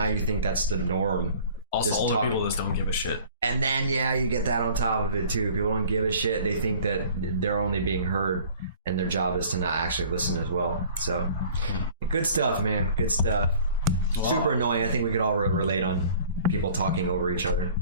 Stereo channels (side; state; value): both; inverted; correlation -0.49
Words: you think that's the norm. Also, older people just don't give a shit. And then you get that on top of it too. People don't give a shit. They think that they're only being heard, and their job is to not actually listen as well. So good stuff, man. Good stuff. Wow. Super annoying. I think we could all relate on people talking over each other.